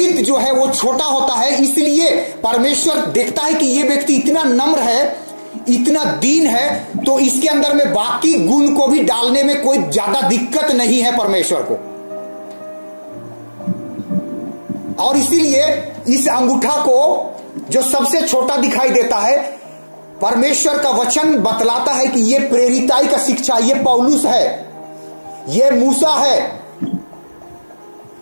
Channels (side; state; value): both; inverted; correlation -1.00